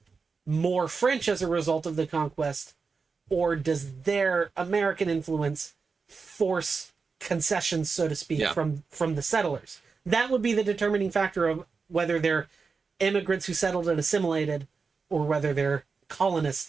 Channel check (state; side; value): quieter; left; 4.9 dB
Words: more French as a result of the conquest, or does their American influence force concessions, so to speak, from the settlers? That would be the determining factor of whether they're immigrants who settled and assimilated, or whether they're